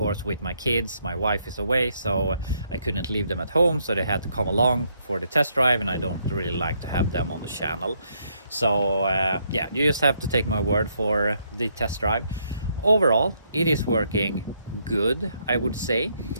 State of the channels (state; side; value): inverted; both; correlation -0.73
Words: with my kids. My wife is away, so I couldn't leave them at home, so they had to come along for the test drive, and I don't really like to have them on the channel. So yeah, you just have to take my word for the test drive. Overall, it is working good, I would say.